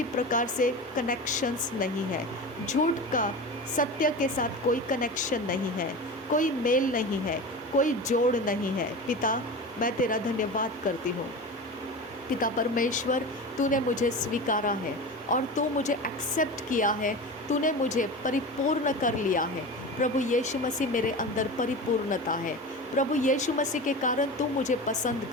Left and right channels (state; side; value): normal; both; correlation 0.29